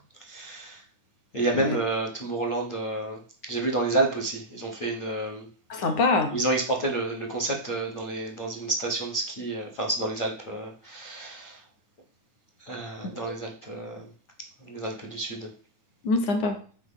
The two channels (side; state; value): right; late; 9.7 ms